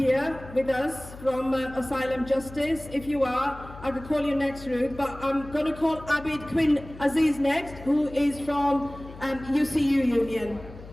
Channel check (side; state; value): left; noise; hum, 16 dB below the sound